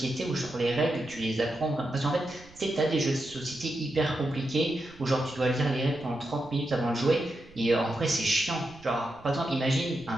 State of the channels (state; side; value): noise; right; rumble, 23 dB below the sound